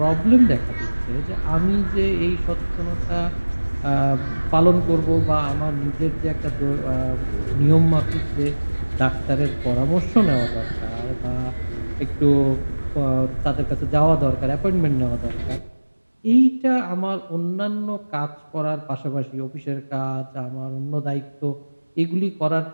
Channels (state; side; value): inverted; both; correlation -1.00